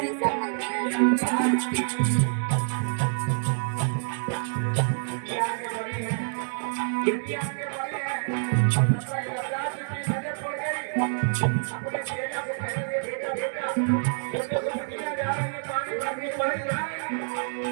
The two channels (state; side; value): silent; left; digital silence